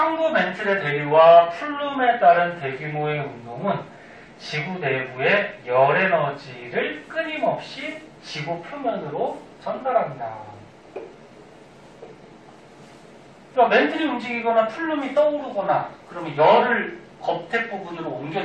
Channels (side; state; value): both; identical; correlation 1.00